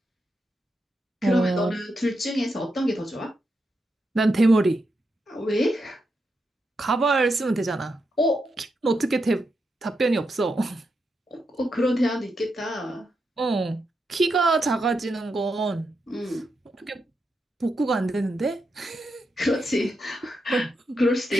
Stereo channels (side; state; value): both; normal; correlation 0.85